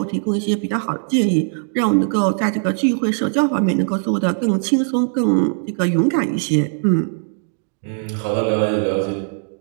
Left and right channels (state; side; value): silent; left; digital silence